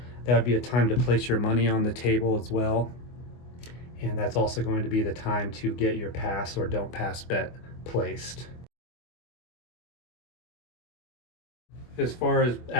that would be a time to place your money on the table as well. And that's also going to be the time to get your pass or don't pass bet placed. As far as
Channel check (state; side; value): late; right; 24 ms